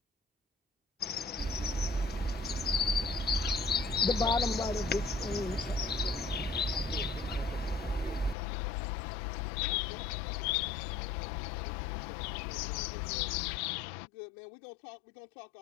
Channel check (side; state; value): right; drops out; at 8.3 s